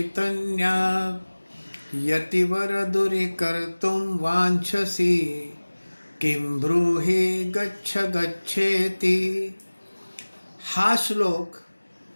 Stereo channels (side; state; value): both; inverted; correlation -1.00